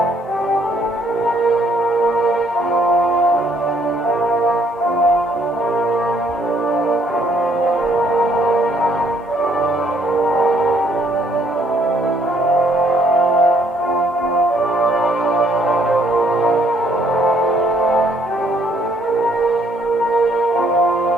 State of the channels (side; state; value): both; normal; correlation 0.66